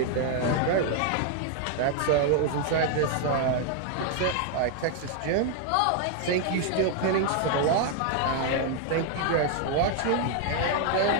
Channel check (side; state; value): both; different; correlation 0.00